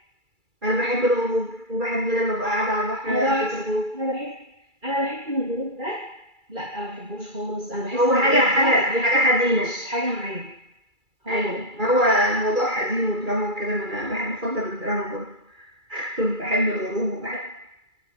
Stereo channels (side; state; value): left; late; 2.3 ms